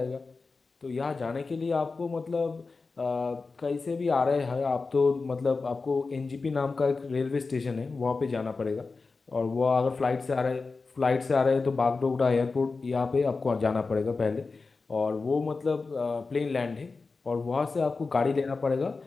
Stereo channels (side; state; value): right; quieter; 4.1 dB